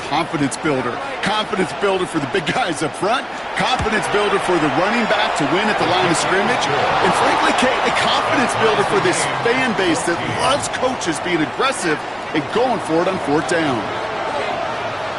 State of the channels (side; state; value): both; identical; correlation 1.00